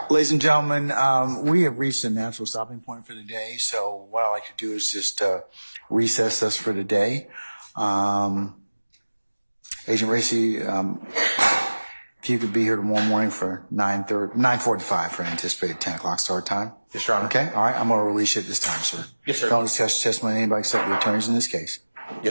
Ladies and gentlemen, we have reached a natural stopping point for the day. So what I like to do is just recess us for the day. Agent Racy, if you could be here tomorrow morning for 9:45 for anticipated 10 o'clock start time. Yes, Your Honor. Okay, all right, I'm going to release you at this time, sir. Yes, sir. Don't discuss testimony with anybody except the attorneys in this case.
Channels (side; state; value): both; inverted; correlation -1.00